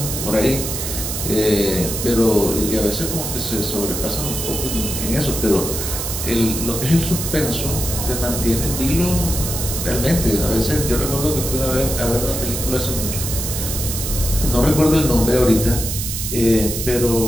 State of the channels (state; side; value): noise; right; hiss, 4 dB below the sound